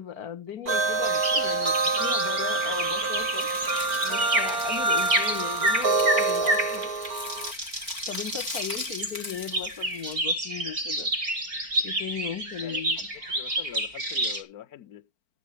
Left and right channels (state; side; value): late; left; 4.4 ms